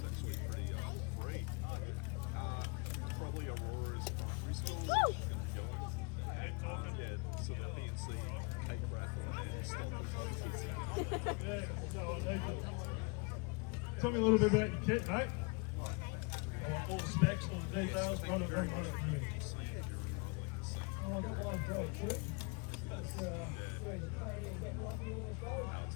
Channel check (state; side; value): quieter; right; 30.6 dB